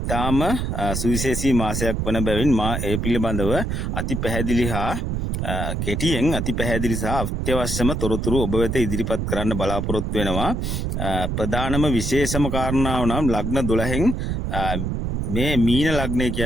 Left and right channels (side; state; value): right; noise; rumble, 1 dB below the sound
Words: සුවිශේෂී මාසයක් වන බැවින් මා ඒ පිළිබඳව අති පැහැදිලි හා කෙටියෙන් අති පැහැදිලි සහ අත්‍යවශ්‍යම තොරතුරු ඔබ වෙත ඉදිරිපත් කරන්න බලාපොරොත්තු වෙනවා. ප්‍රධානම විශේෂම කාරණාව නම් ලග්න 12න් මේ මීන ලග්නය